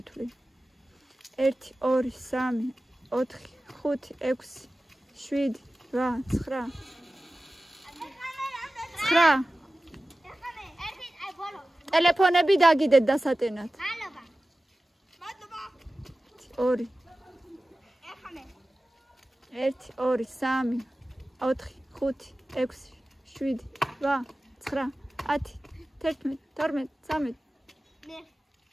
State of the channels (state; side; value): normal; both; correlation 0.96